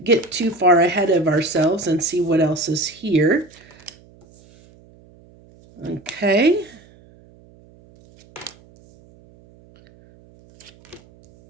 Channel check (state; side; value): noise; right; hum, 27 dB below the sound